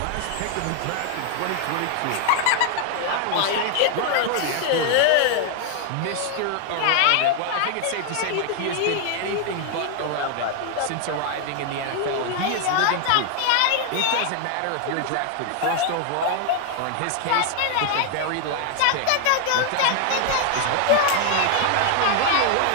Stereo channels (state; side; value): different; both; correlation 0.00